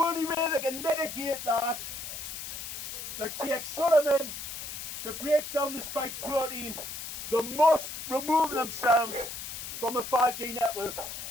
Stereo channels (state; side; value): noise; left; hiss, 8 dB below the sound